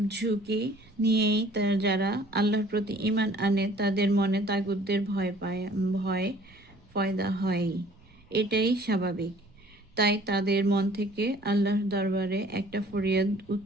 ঝুঁকি নিয়েই যারা আল্লাহর প্রতি ঈমান আনে তাদের মনে তাগুতদের ভয় পয়দা হয়। এটাই স্বাভাবিক। তাই তাদের মন থেকে আল্লাহর দরবারে একটা ফরিয়াদ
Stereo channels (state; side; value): noise; right; rumble, 28 dB below the sound